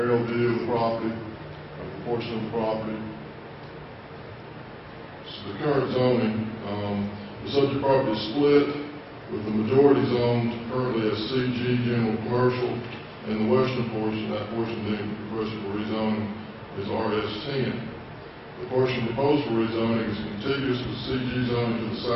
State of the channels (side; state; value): both; identical; correlation 1.00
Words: view of the property, of the portion of the property. This is the current zoning. The subject property is split, with the majority zoned currently as CG General Commercial, and the western portion, that portion being requested for rezoning, is RS10. The portion proposed for rezoning is contiguous with CG zoning to the